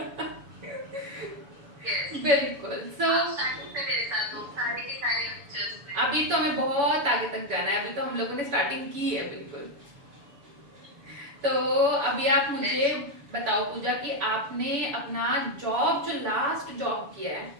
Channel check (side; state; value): left; late; 7.0 ms